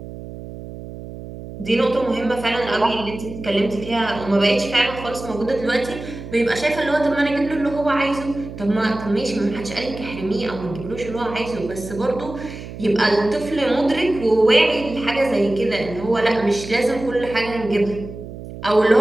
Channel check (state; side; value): noise; right; hum, 12 dB below the sound